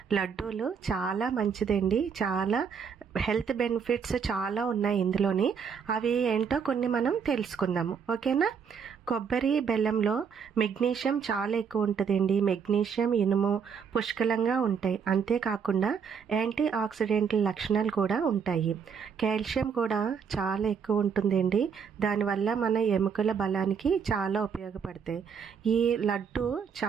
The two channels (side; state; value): left; quieter; 6.6 dB